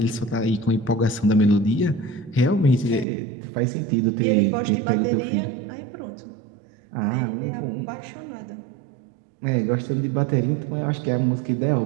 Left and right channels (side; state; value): left; drops out; at 3.1 s